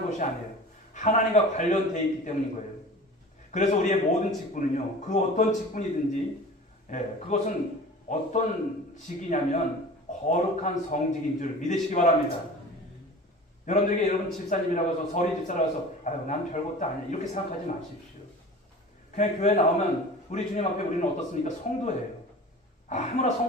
것이 아니에요. 하나님과 관련되어 있기 때문인 거예요. 그래서 우리의 모든 직분은요, 그 어떤 직분이든지, 그것은 어떤 직이냐면 거룩한 성직인 줄 믿으시기 바랍니다. 여러분들에게 여러분 집사님이라고 해서, 서리 집사라고 해서 난 별것도 아니야 이렇게 생각하지 마십시오. 그냥 교회 나오면 우리 주님 앞에 우리는 어떻습니까? 성도예요. 아무나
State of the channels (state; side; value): normal; both; correlation 0.39